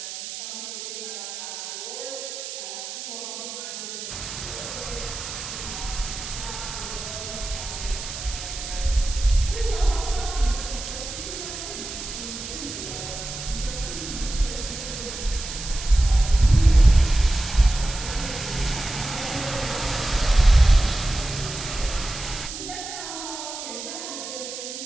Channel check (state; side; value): noise; right; hiss, 8 dB below the sound